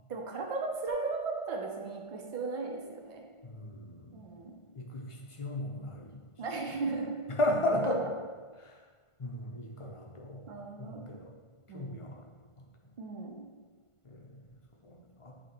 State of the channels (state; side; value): late; right; 1.5 ms